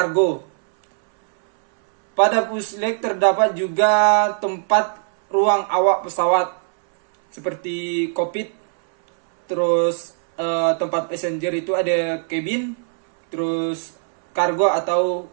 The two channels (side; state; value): left; silent; 66 dB below the other